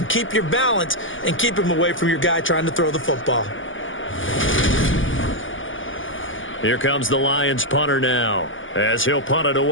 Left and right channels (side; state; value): right; late; 0.57 ms